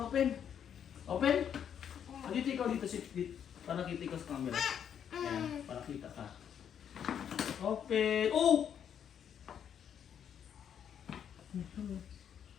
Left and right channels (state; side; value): quieter; right; 8.6 dB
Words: Open? Dito ikaw dito, para kita ikaw sa camera. Ayan, para kita ka. Open. Oh!